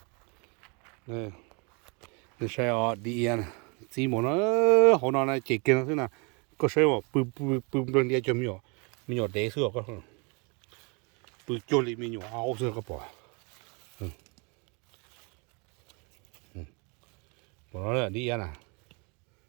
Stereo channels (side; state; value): left; quieter; 32.6 dB